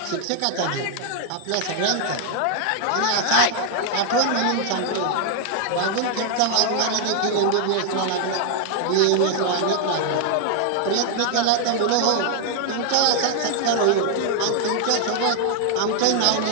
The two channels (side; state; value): both; different; correlation 0.00